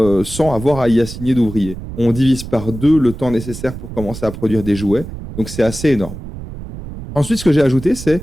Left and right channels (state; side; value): noise; right; rumble, 11 dB below the sound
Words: avoir à y assigner d'ouvriers. On divise par 2 le temps nécessaire pour commencer à produire des jouets, donc c'est assez énorme. Ensuite, ce que j'ai ajouté,